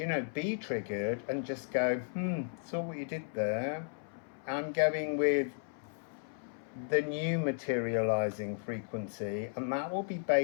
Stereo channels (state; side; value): silent; right; 55 dB below the other